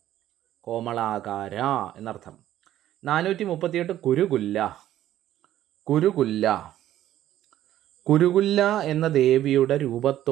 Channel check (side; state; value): left; quieter; 12.8 dB